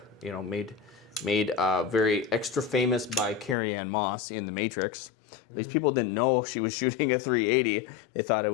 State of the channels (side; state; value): right; drops out; at 3.6 s